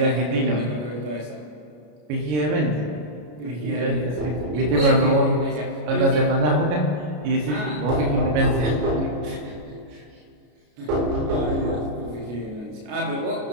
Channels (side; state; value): left; late; 33 ms